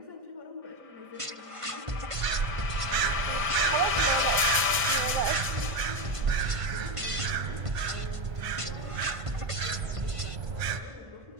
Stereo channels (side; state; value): left; late; 1.5 ms